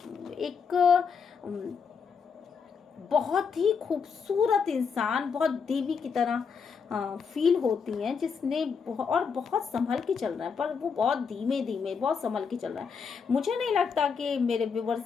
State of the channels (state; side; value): quieter; right; 5.9 dB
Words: एक बहुत ही खूबसूरत इंसान, बहुत देवी की तरह फील होती हैं, जिसने और बहुत संभल के चल रहा है, पर वो बहुत धीमे धीमे बहुत संभल के चल रहा है। मुझे नहीं लगता कि मेरे